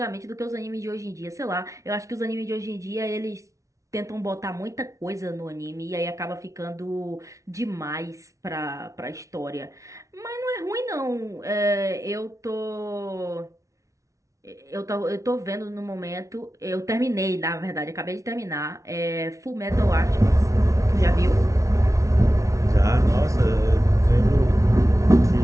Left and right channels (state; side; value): late; left; 0.15 ms